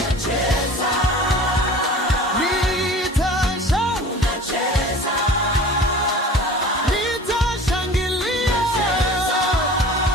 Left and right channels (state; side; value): normal; both; correlation 0.41